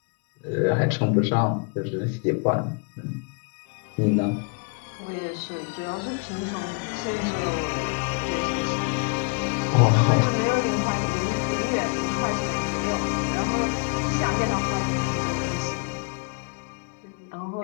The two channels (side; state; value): right; quieter; 33.7 dB